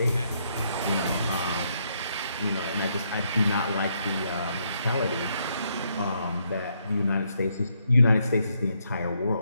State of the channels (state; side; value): inverted; both; correlation -0.75